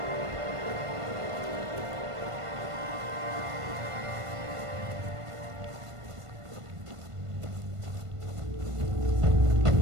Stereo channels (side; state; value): left; late; 1.5 ms